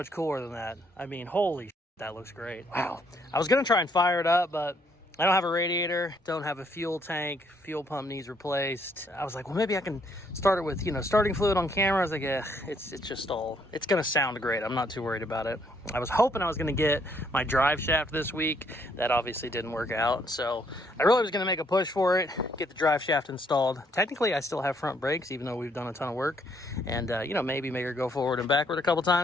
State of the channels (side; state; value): both; normal; correlation 0.69